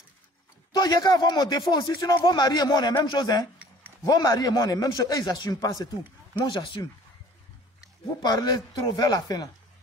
Toi, il y a qu'à avoir mon défaut aussi, sinon vos maris et moi on est la même chose, hein? Vos maris et moi on est la même chose, et ils n'assument pas, c'est tout. Moi j'assume. Vous parlez trop vers la fin là.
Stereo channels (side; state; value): both; normal; correlation 0.51